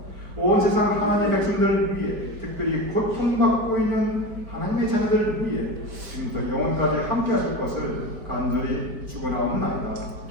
온 세상 하나님의 백성들을 위해 특별히 고통받고 있는 하나님의 자녀들을 위해 지금부터 영원까지 함께 하실 것을 간절히 축원하옵나이다.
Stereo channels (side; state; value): left; late; 4.6 ms